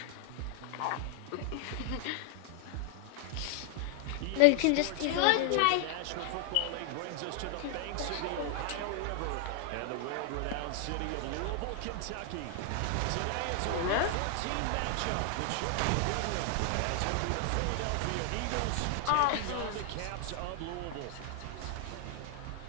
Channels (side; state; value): both; different; correlation 0.00